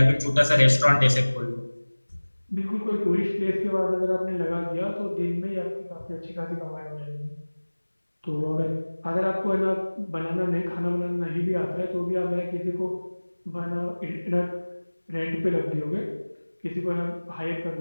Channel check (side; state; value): both; inverted; correlation -1.00